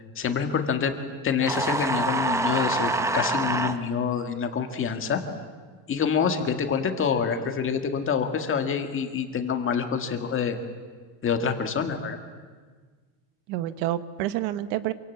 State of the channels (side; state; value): right; quieter; 3.1 dB